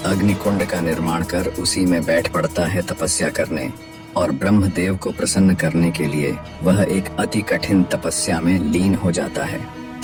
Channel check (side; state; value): both; identical; correlation 1.00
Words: अग्निकुंड का निर्माण कर उसी में बैठ पड़ता है तपस्या करने। और ब्रह्मदेव को प्रसन्न करने के लिए वह एक अति कठिन तपस्या में लीन हो जाता है।